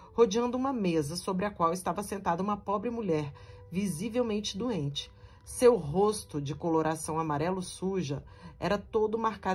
rodeando uma mesa sobre a qual estava sentada uma pobre mulher, visivelmente doente. Seu rosto, de coloração amarelo suja, era todo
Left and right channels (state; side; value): identical; both; correlation 1.00